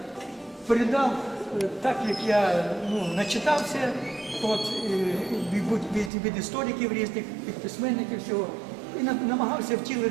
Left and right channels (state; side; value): drops out; left; at 6.1 s